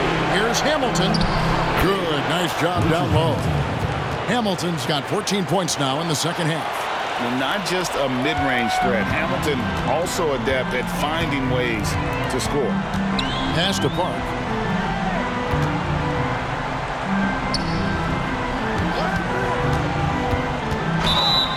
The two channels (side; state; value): both; identical; correlation 1.00